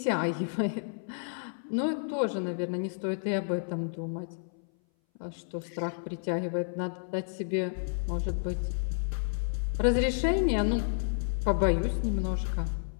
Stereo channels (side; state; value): right; silent; 57 dB below the other